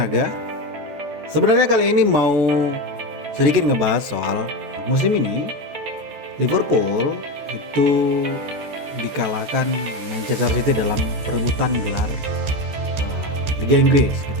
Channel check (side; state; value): left; late; 14 ms